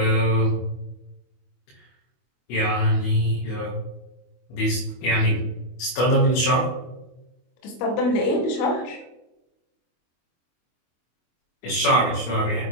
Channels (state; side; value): late; right; 24 ms